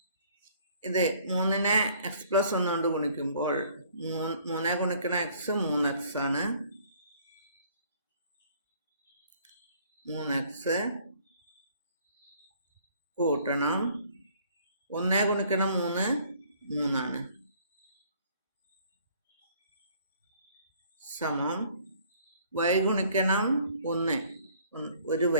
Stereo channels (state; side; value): inverted; both; correlation -0.58